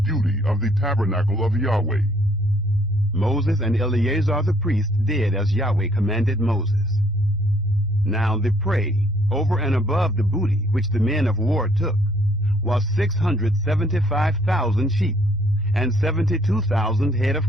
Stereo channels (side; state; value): both; normal; correlation 0.64